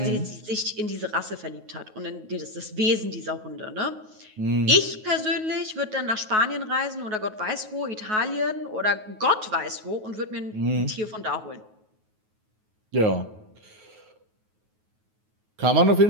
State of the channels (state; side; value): late; left; 9.4 ms